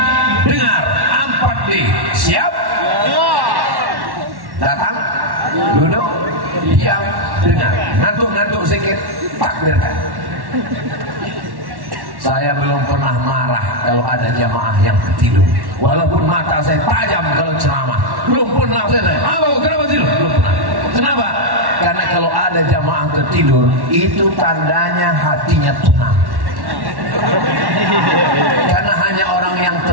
dengar. 4D. Siap? Datang, duduk, diam, dengar. Ngantuk-ngantuk sedikit, takbirkan. Saya belum pernah marah kalau ada jamaah yang tertidur. Walaupun mata saya tajam kalau ceramah, belum pernah saya. Kenapa tidur? Belum pernah. Kenapa? Karena kalau ada jamaah tertidur, itu tandanya hatinya tenang. Karena hanya orang yang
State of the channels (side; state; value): left; late; 1.1 ms